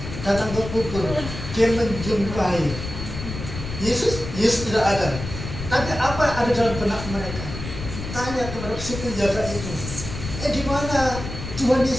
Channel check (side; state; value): left; noise; rumble, 8 dB below the sound